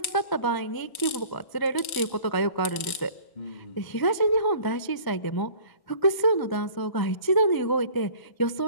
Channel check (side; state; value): right; late; 1.0 ms